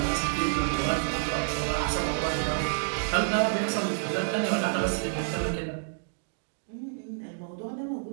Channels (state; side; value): silent; left; digital silence